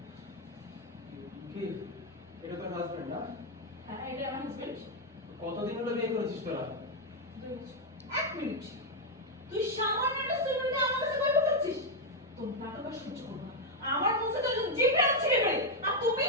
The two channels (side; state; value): both; normal; correlation 0.01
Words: কি এটা তোর হাজবেন্ড না? হ্যাঁ, এটা আমার হাজবেন্ড। কতদিন হলো বিয়ে করেছিস তোরা? 2 বছর। 1 মিনিট। তুই সামান্য একটা স্টুডেন্টকে আমার কাছে কই বলছিস? তোর নাটক আর সহ্য করব না। আমার কাছে তো জিপে আছে রে। আর তুমি